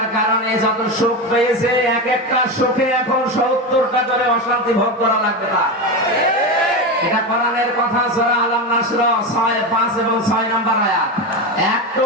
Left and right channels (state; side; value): normal; both; correlation 0.18